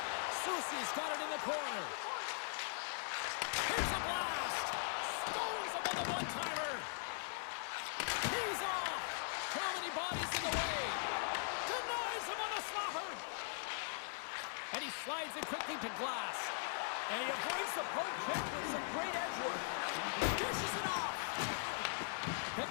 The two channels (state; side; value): silent; right; 51 dB below the other